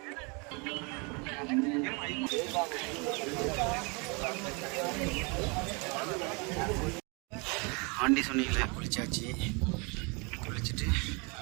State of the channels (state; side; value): quieter; left; 30.9 dB